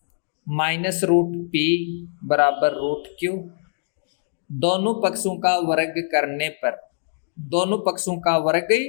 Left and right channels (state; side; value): silent; right; digital silence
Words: माइनस रूट p बराबर रूट q। दोनों पक्षों का वर्ग करने पर, दोनों पक्षों का वर्ग